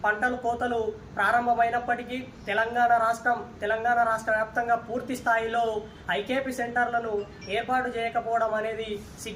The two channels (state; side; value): identical; both; correlation 1.00